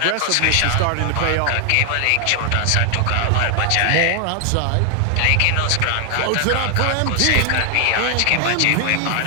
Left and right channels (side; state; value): both; different; correlation 0.00